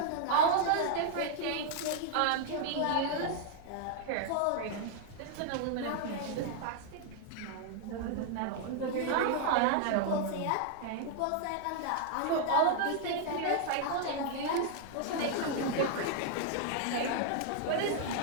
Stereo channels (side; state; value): both; different; correlation 0.00